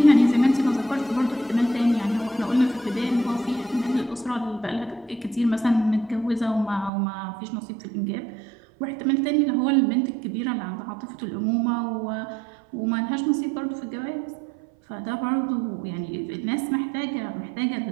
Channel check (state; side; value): drops out; left; at 6.9 s